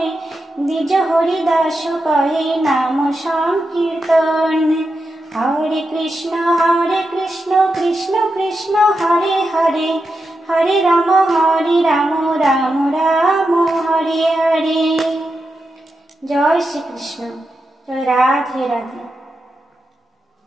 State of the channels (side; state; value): both; normal; correlation 0.88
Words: দ্বিজ হরিদাস কহে নাম সংকীর্তন, হরে কৃষ্ণ কৃষ্ণ কৃষ্ণ হরে হরে, হরে রাম রাম রাম হরে হরে। জয় শ্রীকৃষ্ণ। জয় রাধে রাধে।